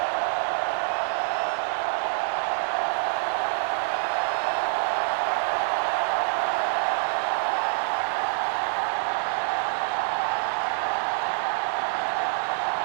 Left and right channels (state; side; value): silent; left; 61 dB below the other